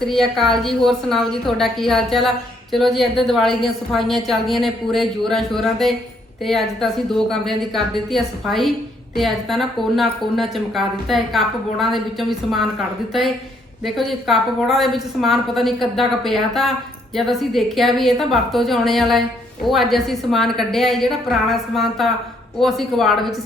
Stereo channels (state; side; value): normal; both; correlation 0.69